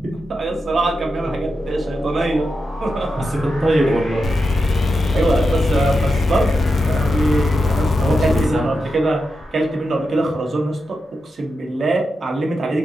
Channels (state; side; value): normal; both; correlation 0.88